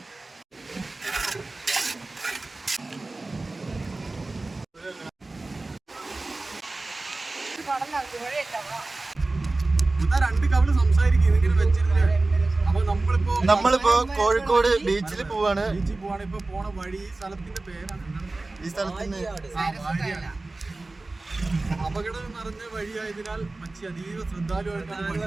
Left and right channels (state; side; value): quieter; left; 3.2 dB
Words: രണ്ട് കവള് സംസാരിക്കും ഇതിങ്ങനെ വെച്ചിരുന്നേ. അപ്പൊ നമ്മളിപ്പോ കോഴിക്കോട് ബീച്ചിൽ പോവാണ്. ഇപ്പൊ പോണ വഴി ഈ സ്ഥലത്തിന്റെ പേരാണ്. ഈ സ്ഥലത്തിന് അപകടം നിറഞ്ഞ വഴിയായതിനാൽ മച്ചി അതീവ ശ്രദ്ധാലുവായിട്ടാണ്